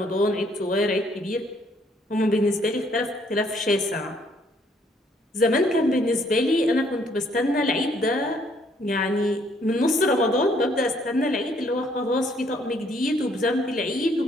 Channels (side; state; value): both; normal; correlation 0.66